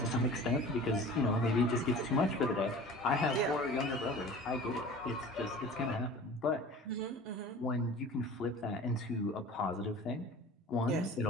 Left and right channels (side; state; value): both; normal; correlation 0.41